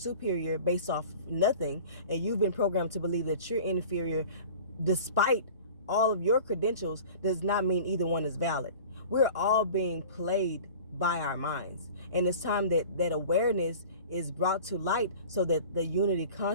based off nothing, and you've been programmed to believe that you're inferior despite all of your credentials, does not mean either one is valid. We're all being played by our minds. And it's time that awareness is brought to light so that the unity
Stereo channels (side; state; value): both; inverted; correlation -0.41